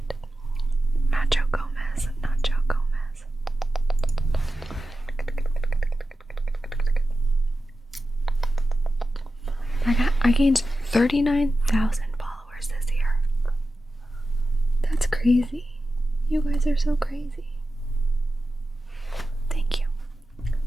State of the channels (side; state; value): both; normal; correlation 0.93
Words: Nacho Gomez, Nacho Gomez. I gained 39,000 followers this year. That's crazy. You guys are so crazy. Thank you.